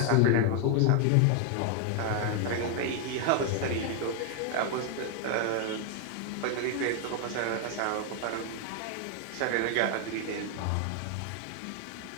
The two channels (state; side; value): different; both; correlation 0.00